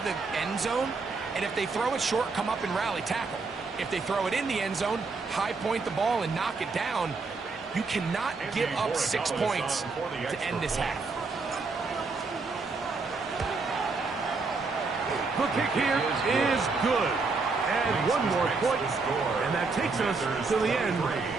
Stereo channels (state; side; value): quieter; left; 4.2 dB